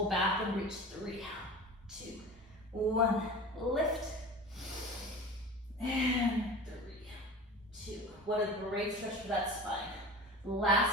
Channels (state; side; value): normal; both; correlation 0.35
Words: back and reach, 3, 2, 1. Lift and 3, 2. What a great stretch for that spine.